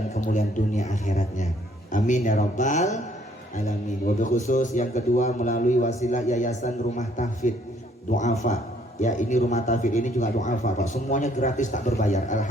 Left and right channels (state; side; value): normal; both; correlation 0.64